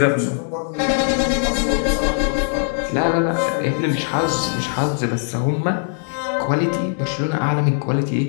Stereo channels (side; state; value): right; silent; digital silence